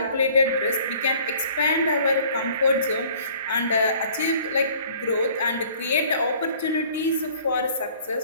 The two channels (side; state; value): both; inverted; correlation -0.54